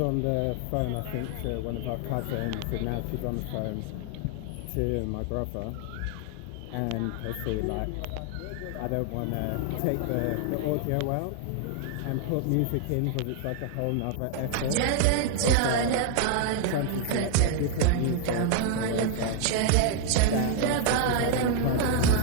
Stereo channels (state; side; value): different; both; correlation 0.00